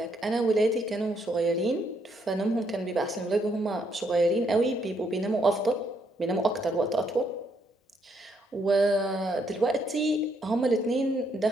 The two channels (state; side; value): normal; both; correlation 0.73